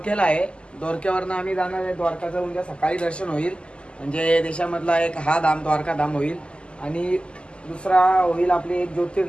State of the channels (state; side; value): late; right; 0.052 ms